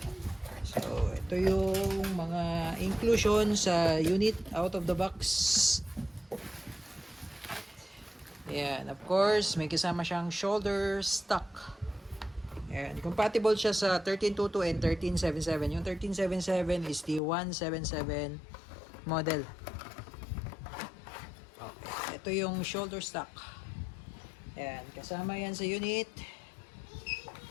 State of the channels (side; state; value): right; drops out; at 17.2 s